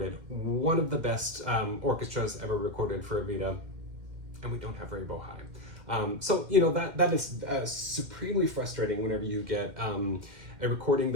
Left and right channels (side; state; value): left; late; 2.1 ms